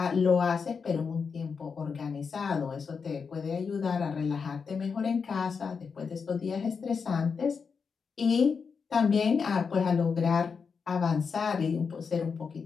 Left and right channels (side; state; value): right; quieter; 5.6 dB